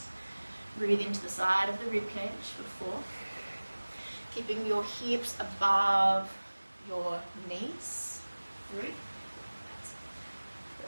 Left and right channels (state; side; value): inverted; both; correlation -1.00